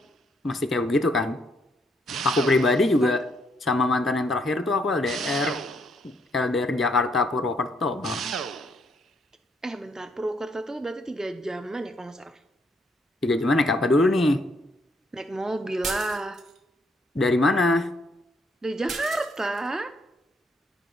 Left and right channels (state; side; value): normal; both; correlation 0.72